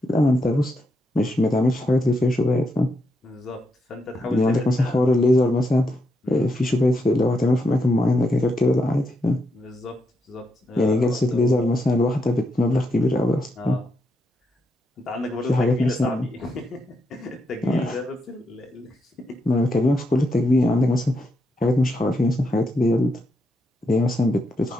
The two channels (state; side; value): normal; both; correlation 0.81